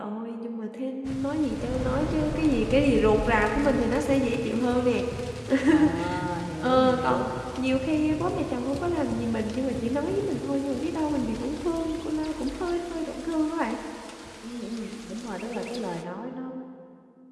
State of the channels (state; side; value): identical; both; correlation 1.00